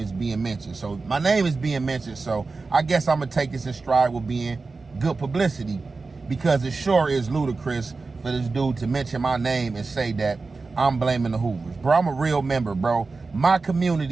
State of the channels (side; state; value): left; quieter; 4.0 dB